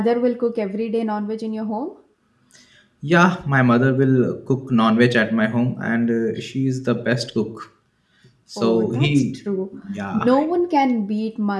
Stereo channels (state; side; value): identical; both; correlation 1.00